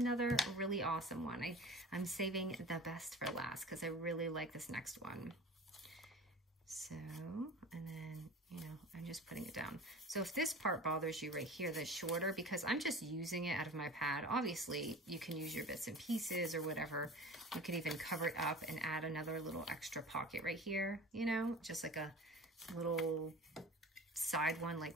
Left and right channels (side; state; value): both; normal; correlation 0.38